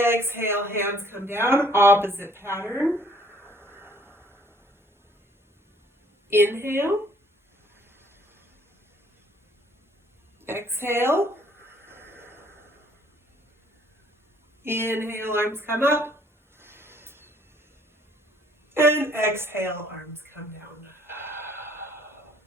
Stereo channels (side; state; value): both; normal; correlation 0.61